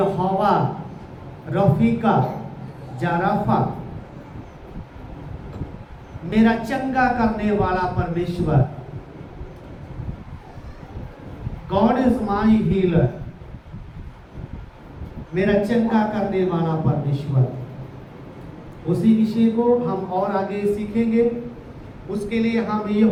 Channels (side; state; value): both; identical; correlation 1.00